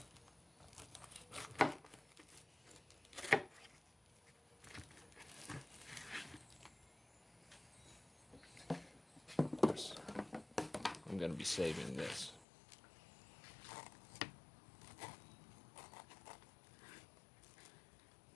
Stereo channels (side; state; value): right; drops out; at 12.5 s